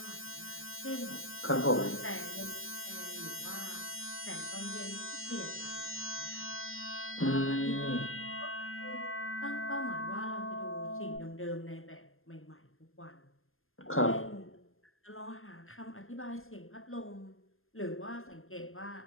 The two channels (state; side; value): late; right; 0.60 ms